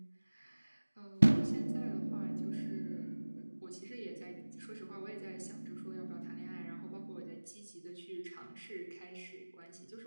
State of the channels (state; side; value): inverted; both; correlation -1.00